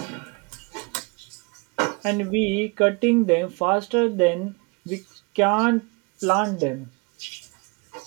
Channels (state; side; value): quieter; left; 29.7 dB